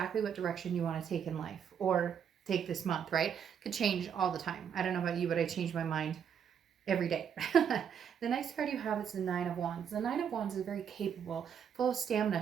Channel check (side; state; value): left; quieter; 8.0 dB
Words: what direction you want to take in life or take this month, right? Could change all the time. I don't know about you, but I change my mind every day. The next card you have is the 9 of Wands. The 9 of Wands is very capable, full of